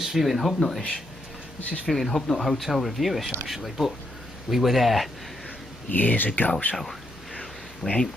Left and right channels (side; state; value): both; normal; correlation 0.78